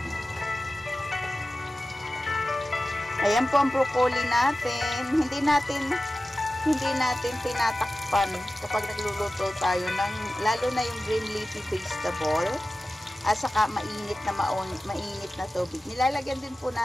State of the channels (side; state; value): both; normal; correlation 0.95